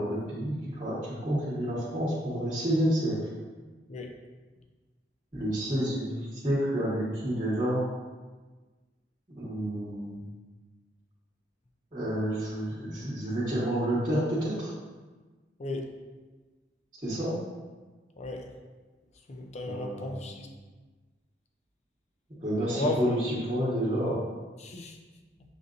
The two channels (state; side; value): normal; both; correlation 0.69